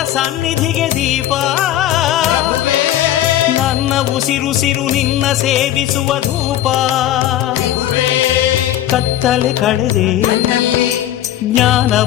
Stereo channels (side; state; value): right; quieter; 12.7 dB